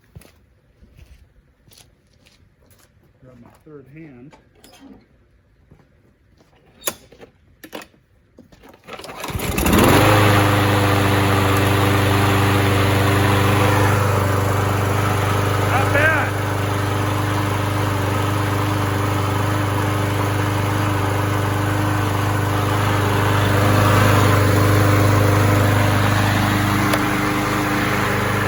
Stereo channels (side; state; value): both; identical; correlation 1.00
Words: Grab my third hand. Not bad.